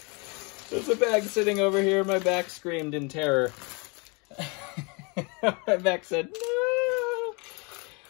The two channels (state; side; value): quieter; right; 30.8 dB